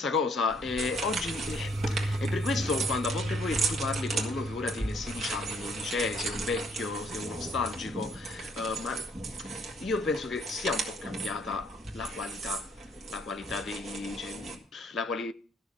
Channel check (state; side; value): normal; both; correlation 0.65